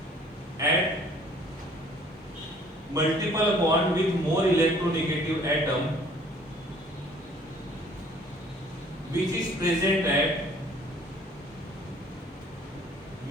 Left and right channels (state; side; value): normal; both; correlation 0.56